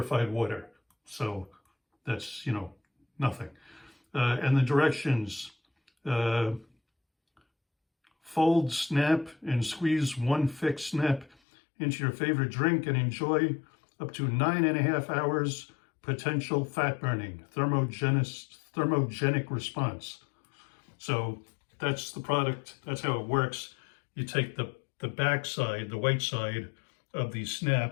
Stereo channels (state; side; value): drops out; right; at 11.4 s